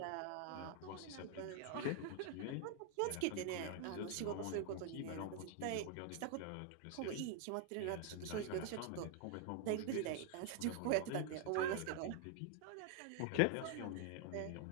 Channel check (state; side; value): different; both; correlation 0.00